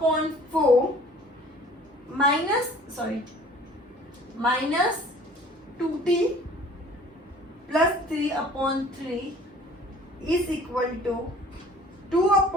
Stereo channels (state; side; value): normal; both; correlation 0.50